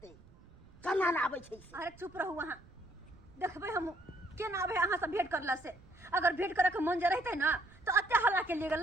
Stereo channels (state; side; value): noise; right; rumble, 24 dB below the sound